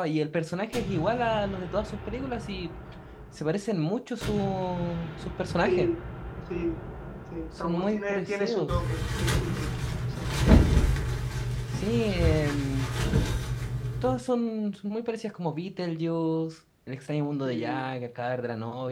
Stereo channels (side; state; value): both; identical; correlation 1.00